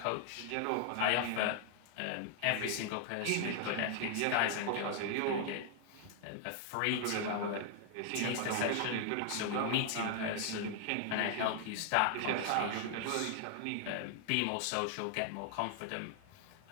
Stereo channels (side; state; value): both; different; correlation 0.00